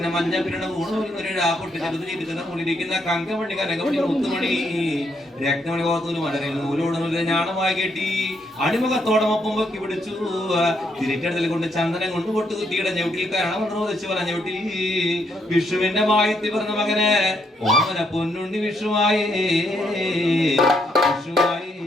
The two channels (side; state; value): both; normal; correlation 0.75